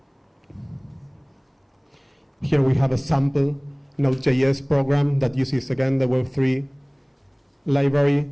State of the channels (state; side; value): identical; both; correlation 1.00